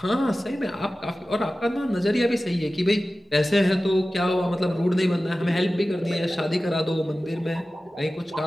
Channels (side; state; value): both; normal; correlation 0.95